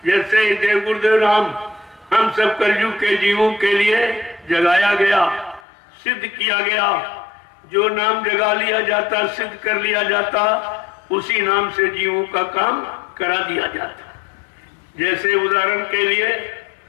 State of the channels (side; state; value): right; drops out; at 5.6 s